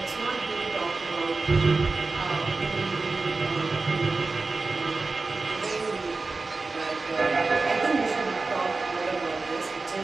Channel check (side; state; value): left; quieter; 3.7 dB